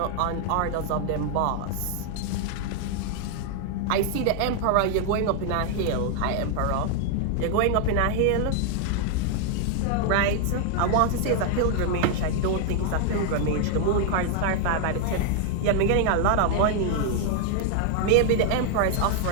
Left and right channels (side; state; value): both; different; correlation 0.00